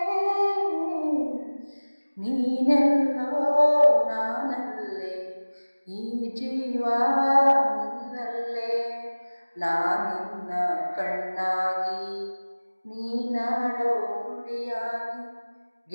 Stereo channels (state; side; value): inverted; both; correlation -1.00